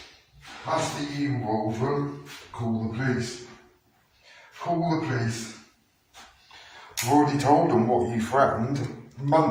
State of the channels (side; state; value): both; identical; correlation 1.00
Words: That's the involved room. Call the police. Call the police. I've already told them what you threatened